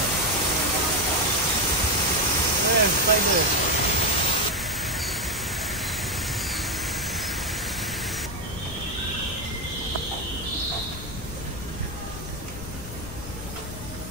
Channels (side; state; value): left; noise; rumble, 11 dB below the sound